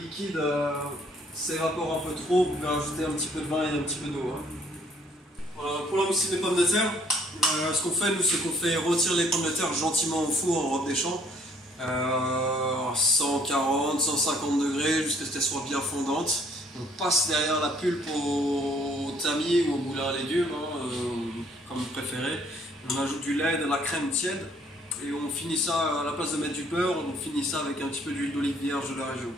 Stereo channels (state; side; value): normal; both; correlation 0.62